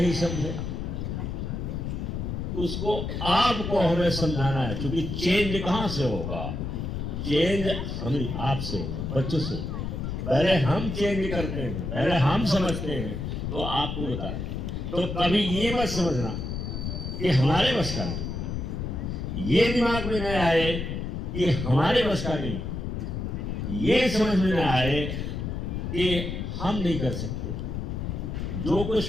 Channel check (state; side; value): noise; left; rumble, 4 dB below the sound